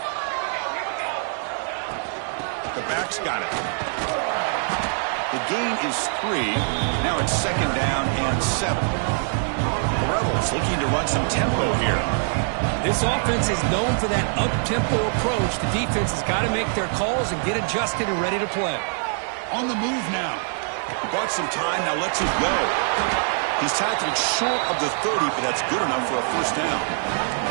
The back's got it. The gain is 3. Now it's 2nd down and 7. The Rebels looking to run some tempo here. This offense is known for that up-tempo approach. The defense has got to make their calls and get adjusted and ready to play. On the move now. He bought some time, now lets it go. He's tackled short of the 30, but that's good enough for a 1st down.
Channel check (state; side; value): silent; left; 63 dB below the other